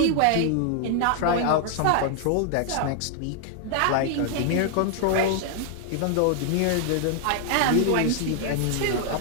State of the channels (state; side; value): different; both; correlation 0.00